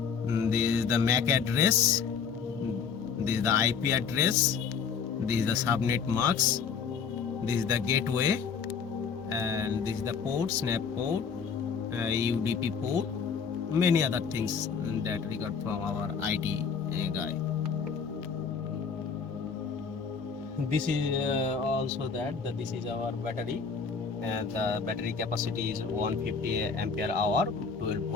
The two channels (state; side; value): quieter; right; 6.1 dB